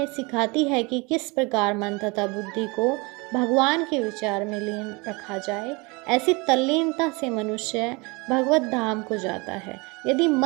सिखाती है कि किस प्रकार मन तथा बुद्धि को भगवान के विचार में लीन रखा जाए। ऐसी तल्लीनता से मनुष्य भगवत धाम को जाता है। यदि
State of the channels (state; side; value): quieter; left; 27.1 dB